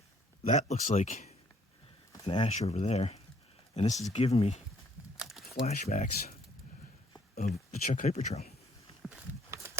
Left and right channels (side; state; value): both; normal; correlation 0.64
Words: That looks like an ash over there. And this is giving me flashbacks of the Chuck Hyper Trail.